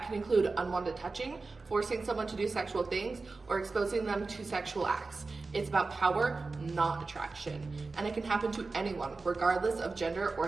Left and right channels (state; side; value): quieter; left; 3.9 dB